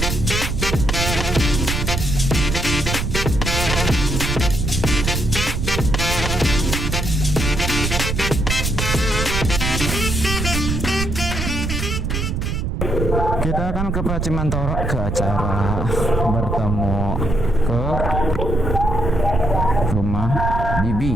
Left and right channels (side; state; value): right; noise; rumble, 1 dB below the sound